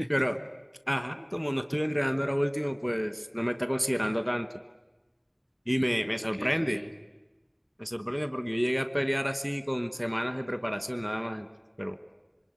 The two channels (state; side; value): identical; both; correlation 1.00